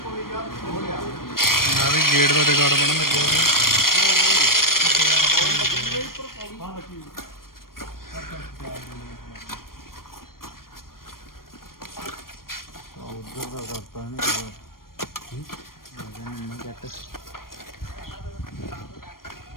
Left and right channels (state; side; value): late; right; 0.92 ms